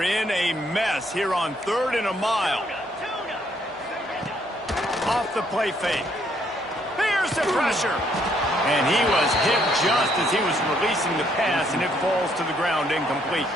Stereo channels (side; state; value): right; noise; hum, 30 dB below the sound